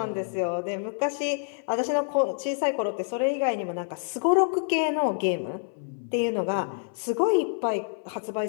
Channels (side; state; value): right; silent; 60 dB below the other